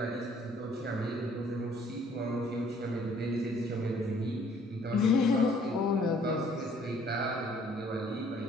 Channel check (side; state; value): both; normal; correlation 0.59